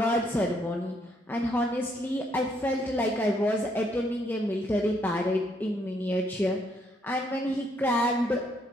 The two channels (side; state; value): both; normal; correlation 0.71